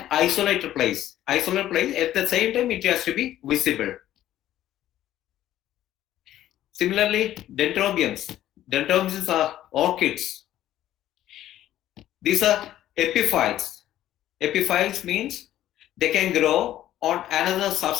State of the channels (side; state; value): right; quieter; 12.9 dB